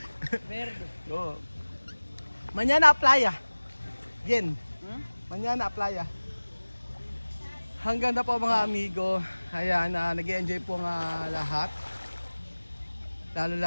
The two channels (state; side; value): inverted; both; correlation -1.00